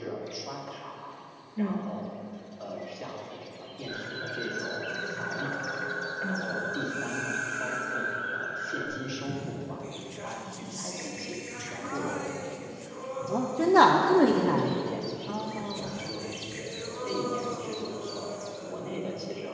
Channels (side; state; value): both; identical; correlation 1.00